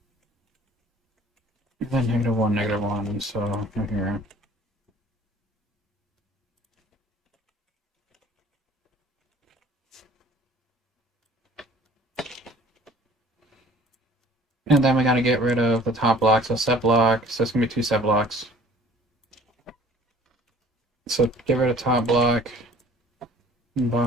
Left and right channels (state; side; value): normal; both; correlation 0.51